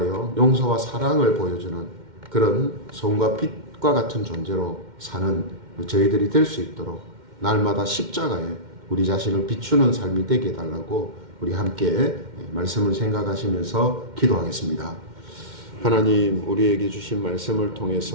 용서와 사랑을 보여주는 그런 소금과 빛과 같은 존재로 사는 저희들이 될 수 있도록 날마다 십자가에 우리 자신을 비추는 삶이 되게 해달라고 우리 함께 말씀을 생각하시면서 기도하겠습니다. 하나님, 우리에게 주신 말씀을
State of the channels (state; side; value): late; left; 2.1 ms